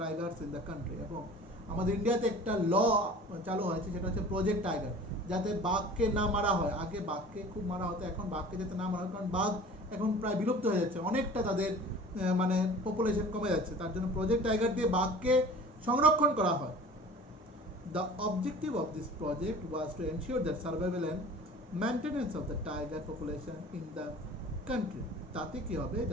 tigers in the country. এবং আমাদের ইন্ডিয়াতে একটা ল চালু হয়েছে, সেটা হচ্ছে প্রজেক্ট টাইগার, যাতে বাঘকে না মারা হয়। আগে বাঘকে খুব মারা হতো, এখন বাঘকে যাতে না মারা হয়, কারণ বাঘ এখন প্রায় বিলুপ্ত হয়ে যাচ্ছে, অনেকটা তাদের মানে পপুলেশন কমে যাচ্ছে, তার জন্য প্রজেক্ট টাইগার দিয়ে বাঘকে সংরক্ষণ করা হয়। The objective of this project was to ensure that survival and maintenance of the tiger population in the country. তাতে কি হবে,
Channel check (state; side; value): normal; both; correlation 0.43